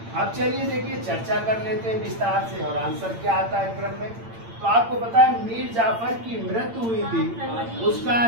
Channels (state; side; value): late; left; 8.8 ms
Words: अब चलिए देखिए चर्चा कर लेते हैं विस्तार से और आंसर क्या आता है क्रम में। तो आपको पता है मीर जाफर की मृत्यु हुई थी, उसका